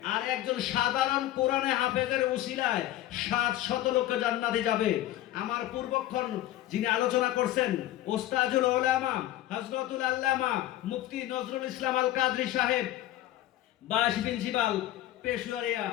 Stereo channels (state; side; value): quieter; right; 14.2 dB